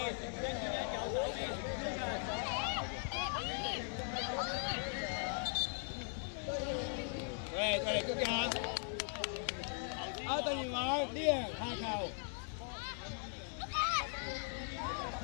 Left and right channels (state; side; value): silent; right; 51 dB below the other